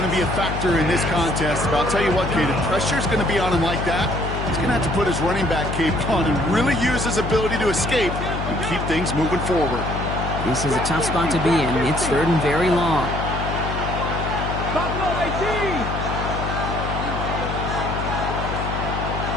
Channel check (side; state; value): left; noise; hum, 4 dB below the sound